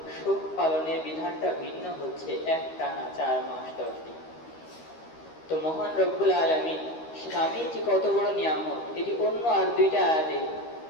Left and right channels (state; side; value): late; right; 13 ms